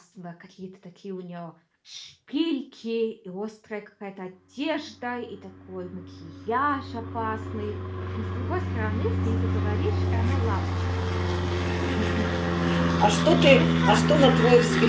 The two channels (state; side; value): identical; both; correlation 1.00